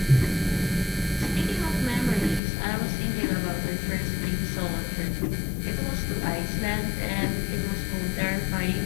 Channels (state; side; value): drops out; right; at 2.4 s